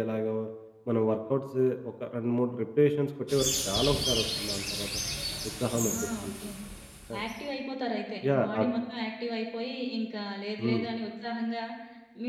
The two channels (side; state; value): both; identical; correlation 1.00